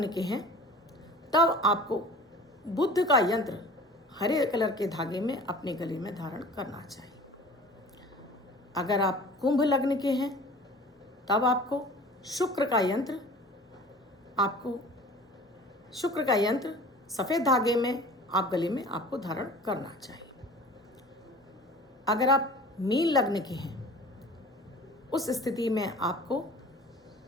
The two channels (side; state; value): both; normal; correlation 0.43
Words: के हैं तब आपको बुध का यंत्र हरे कलर के धागे में अपने गले में धारण करना चाहिए। अगर आप कुंभ लग्न के हैं तब आपको शुक्र का यंत्र सफ़ेद धागे में आप गले में आपको धारण करना चाहिए। अगर आप मीन लग्न के हैं उस स्थिति में आपको